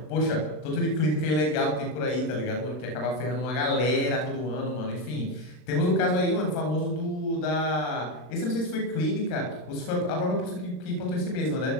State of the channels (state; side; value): late; right; 39 ms